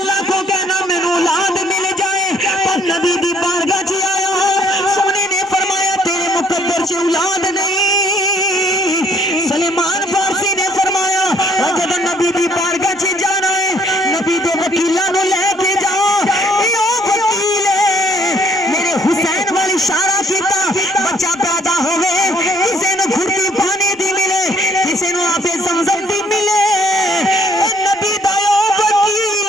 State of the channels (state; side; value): normal; both; correlation 0.64